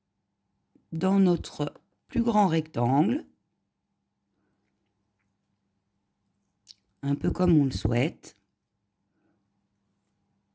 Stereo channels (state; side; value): identical; both; correlation 1.00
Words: dans notre plus grand rectangle, un peu comme on le souhaite.